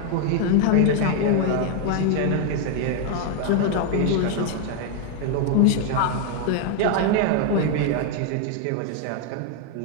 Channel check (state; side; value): different; both; correlation 0.01